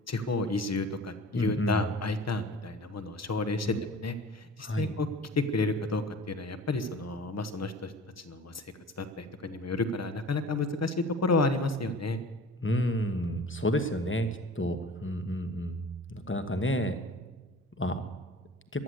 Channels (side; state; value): both; normal; correlation 0.43